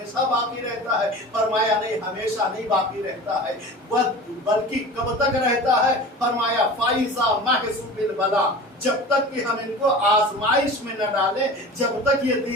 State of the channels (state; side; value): normal; both; correlation 0.36